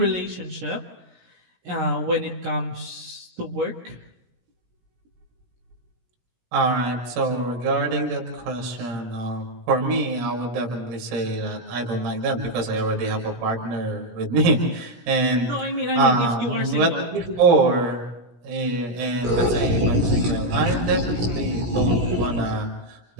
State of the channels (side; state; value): left; late; 17 ms